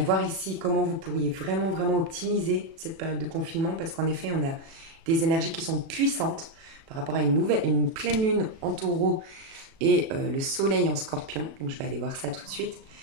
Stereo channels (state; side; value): late; left; 36 ms